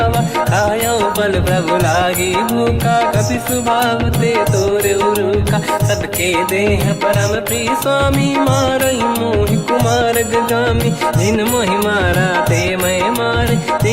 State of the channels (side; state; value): both; identical; correlation 1.00